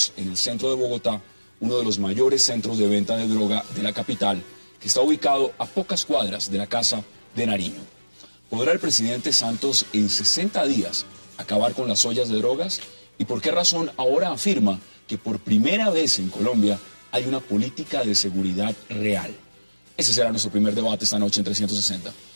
en el centro de Bogotá, uno de los mayores centros de venta de droga de la capital, que está ubicado a pocas cuadras de la Casa de Nariño. ¿Podrá el presidente Santos en 60 días acabar con las ollas de drogas? ¿Y por qué razón ahora afirma que por primera vez en Colombia hay una política de seguridad real? Ese será nuestro primer debate esta noche en 360.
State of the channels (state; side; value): inverted; both; correlation -1.00